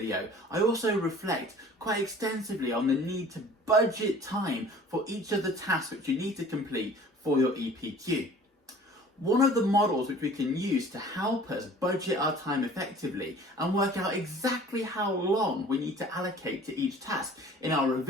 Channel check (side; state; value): both; normal; correlation 0.48